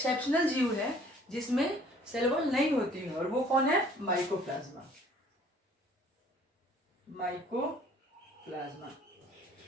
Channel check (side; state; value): both; normal; correlation 0.55